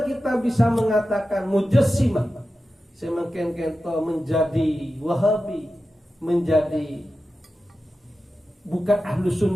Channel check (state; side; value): normal; both; correlation 0.93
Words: kita bisa mengatakan mujassimah semakin kento menjadi Wahabi, menjadi bukan Ahlus